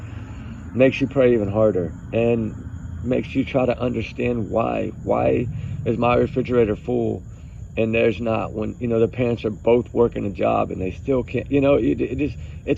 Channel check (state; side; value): identical; both; correlation 1.00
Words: makes you pray even harder, and makes you try to understand why. Why is my refrigerator full and there's not, when, you know, the parents are both working a job and they still can't, you know,